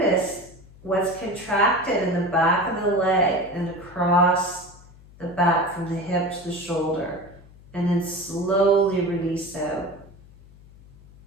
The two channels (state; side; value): noise; left; hum, 23 dB below the sound